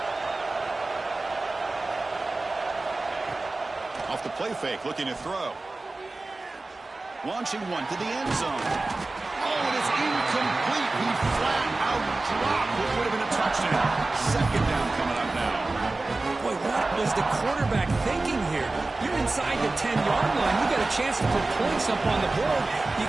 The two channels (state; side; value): quieter; left; 3.2 dB